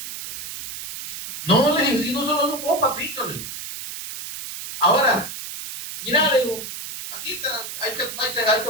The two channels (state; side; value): noise; right; hiss, 9 dB below the sound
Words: No, le digo, si no solo sos vos, papito. Le digo. Ahora, mira, le digo, aquí ahí te